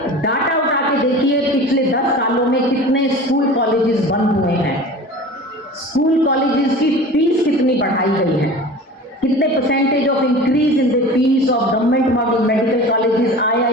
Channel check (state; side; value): normal; both; correlation 0.37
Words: डाटा उठा के देखिए, पिछले 10 सालों में कितने स्कूल कॉलेजेस बंद हुए हैं, स्कूल कॉलेजेस की फीस कितनी बढ़ाई गई है, कितने percentage of increase in the fees of government model medical colleges,